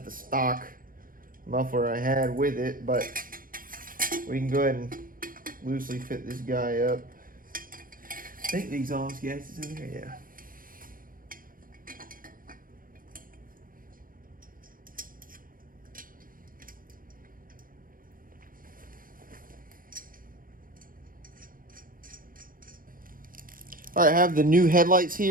the stock muffler I had with it, but we can go ahead and loosely fit this guy up. I think the exhaust gas is in there, yeah. All right, I have the new headlights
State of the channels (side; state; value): left; late; 0.41 ms